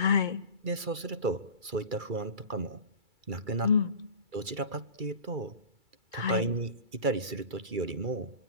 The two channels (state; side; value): late; left; 2.3 ms